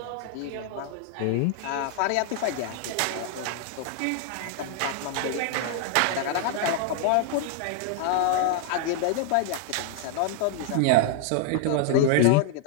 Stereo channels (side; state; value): both; different; correlation 0.00